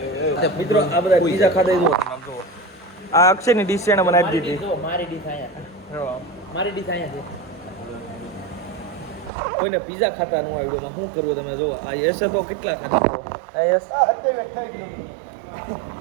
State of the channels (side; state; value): left; drops out; at 9.3 s